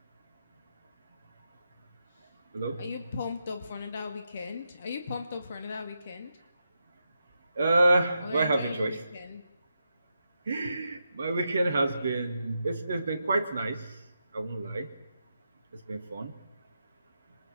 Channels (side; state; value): both; inverted; correlation -0.85